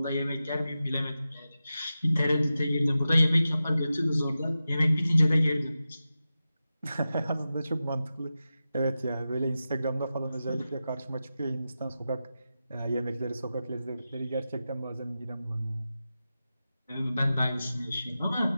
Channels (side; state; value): both; inverted; correlation -0.92